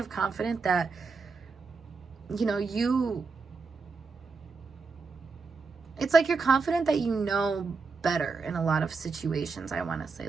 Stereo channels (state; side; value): quieter; left; 4.5 dB